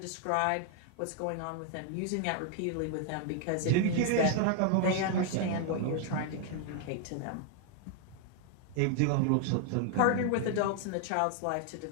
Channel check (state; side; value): different; both; correlation 0.00